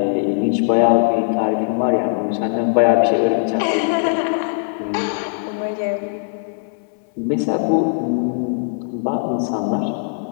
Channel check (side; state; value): right; silent; digital silence